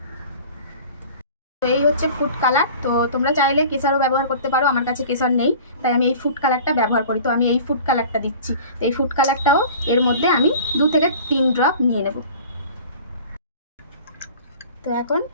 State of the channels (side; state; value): both; inverted; correlation -0.42